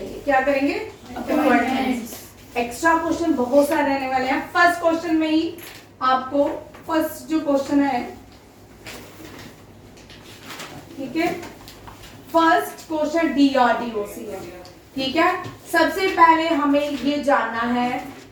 क्या करेंगे? अपॉइंटमेंट्स। एक्स्ट्रा क्वेश्चन बहुत सारे रहने वाले हैं। फर्स्ट क्वेश्चन में ही आपको फर्स्ट जो क्वेश्चन है, ठीक है, फर्स्ट क्वेश्चन डीआरडीओ से है। ठीक है, सबसे पहले हमें ये जानना है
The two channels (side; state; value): both; identical; correlation 1.00